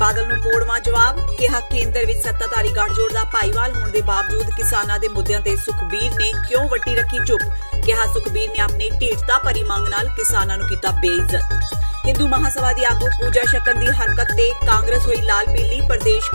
ਨੂੰ ਮੋੜਵਾਂ ਜਵਾਬ, ਕਿਹਾ ਕੇਂਦਰ ਵਿੱਚ ਸੱਤਾਧਾਰੀ ਗੱਠਜੋੜ ਦਾ ਭਾਈਵਾਲ ਹੋਣ ਦੇ ਬਾਵਜੂਦ ਕਿਸਾਨਾਂ ਦੇ ਮੁੱਦਿਆਂ ਤੇ ਸੁਖਬੀਰ ਨੇ ਕਿਉਂ ਵੱਟੀ ਰੱਖੀ ਚੁੱਪ। ਕਿਹਾ ਸੁਖਬੀਰ ਨੇ ਆਪਣੀ ਢੀਠਤਾ ਭਰੀ ਮੰਗ ਨਾਲ ਕਿਸਾਨਾਂ ਨੂੰ ਕੀਤਾ ਬੇਇੱਜ਼ਤ। ਹਿੰਦੂ ਮਹਾਸਭਾ ਦੀ ਆਗੂ ਪੂਜਾ ਸ਼ਕਨ ਦੀ ਹਰਕਤ ਤੇ ਕਾਂਗਰਸ ਹੋਈ ਲਾਲ ਪੀਲੀ। ਪ੍ਰਦੇਸ਼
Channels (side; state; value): both; inverted; correlation -1.00